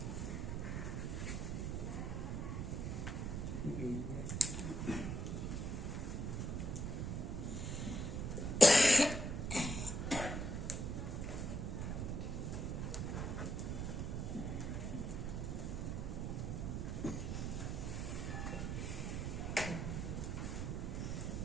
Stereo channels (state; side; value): noise; right; rumble, 1 dB below the sound